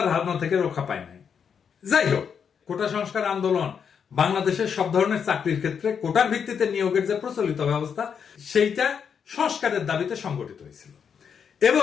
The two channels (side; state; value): right; quieter; 7.1 dB